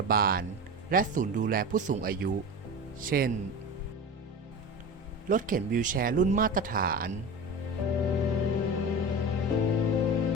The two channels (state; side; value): normal; both; correlation 0.29